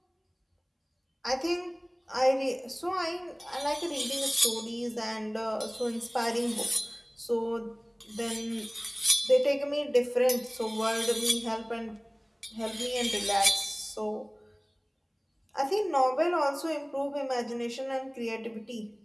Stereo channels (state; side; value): identical; both; correlation 1.00